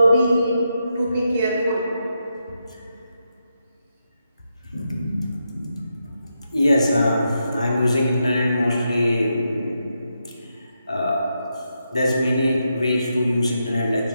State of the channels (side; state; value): both; inverted; correlation -0.84